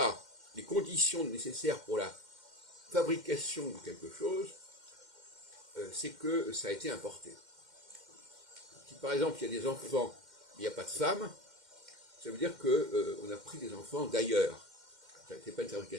les conditions nécessaires pour la fabrication de quelque chose, c'est que ça a été importé. Si par exemple il y a des enfants, mais il n'y a pas de femmes, ça veut dire qu'on a pris des enfants d'ailleurs. Ce n'est pas une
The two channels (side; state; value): left; late; 2.1 ms